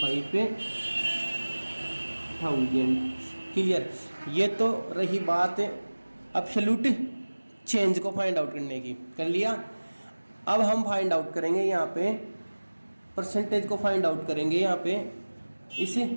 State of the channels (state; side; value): inverted; both; correlation -1.00